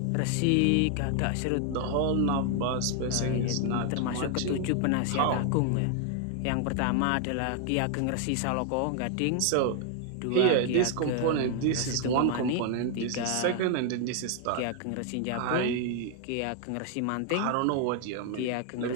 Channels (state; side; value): different; both; correlation 0.00